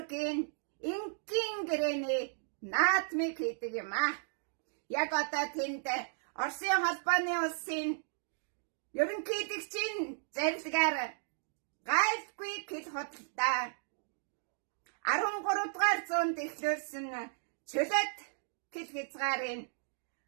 инкийн гэрээний наадмыг хийдэг юм аа. Яг одоо тэнд Оросын холбооны улсын ерөнхийлөгчийн зарилгаар гайлгүй хэл худалдаа 13 дугаар зуунд эхлүүлсэн чөлөөт хэл хязгаарын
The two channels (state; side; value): silent; left; digital silence